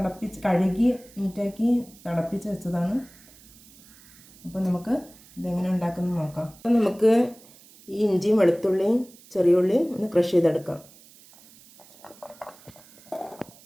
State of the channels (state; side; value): noise; right; hiss, 24 dB below the sound